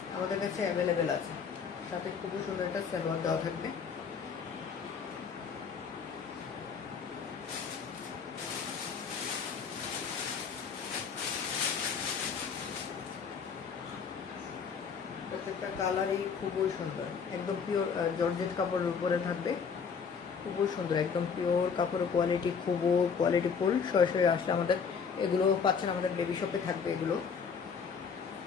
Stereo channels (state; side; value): quieter; right; 6.2 dB